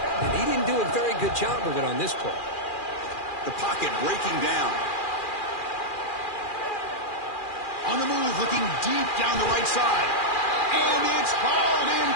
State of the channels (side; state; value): right; late; 2.4 ms